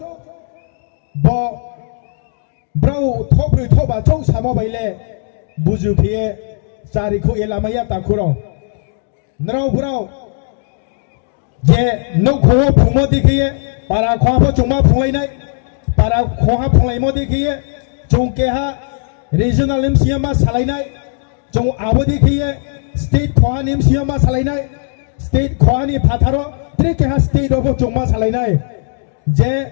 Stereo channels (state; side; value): silent; right; 56 dB below the other